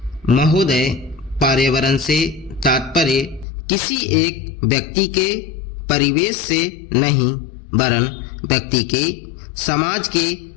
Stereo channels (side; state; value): right; drops out; at 3.5 s